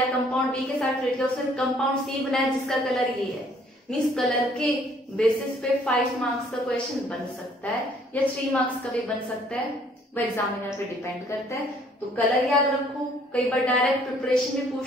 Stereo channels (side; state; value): both; normal; correlation 0.61